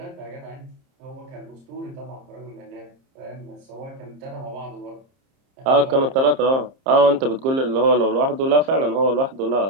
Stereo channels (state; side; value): late; left; 30 ms